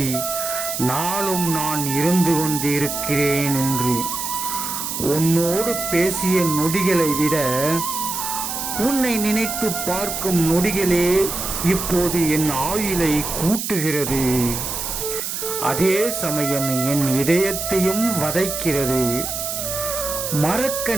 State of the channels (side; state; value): right; noise; hiss, 4 dB below the sound